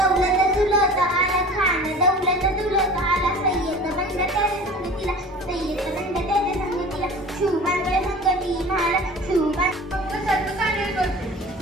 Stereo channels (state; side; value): normal; both; correlation 0.40